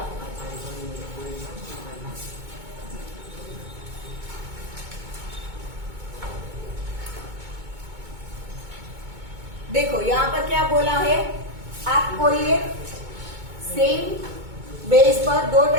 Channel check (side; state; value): left; late; 2.2 ms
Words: देखो यहाँ पर क्या बोला है, आप कोई एक सेम बेस पर दो